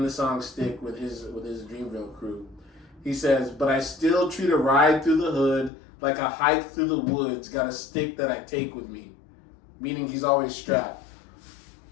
the song "Stick" with his Dreamville crew. He says, "But I still treat a ride through the hood like a hike through the woods. Got a stick that I take with me," meaning he's always strapped.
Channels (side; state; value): right; drops out; at 5.7 s